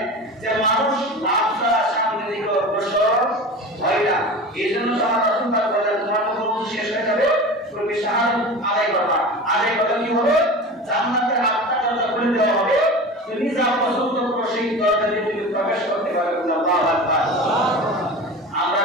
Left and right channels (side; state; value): both; normal; correlation 0.32